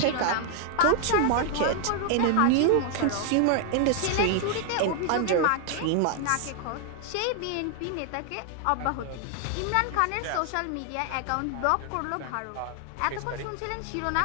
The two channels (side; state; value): both; different; correlation 0.00